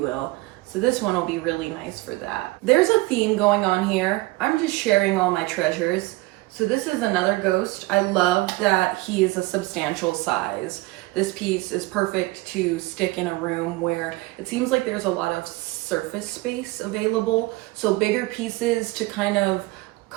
So this one will be really nice for that. There's a theme going on here. I'm just sharing all my treasures. So this is another ghost. I love that he is a substantial size. This piece is perfect to stick in a room where it seems like there's a lot of surface space available. So bigger pieces to kind of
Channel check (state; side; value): quieter; left; 21.0 dB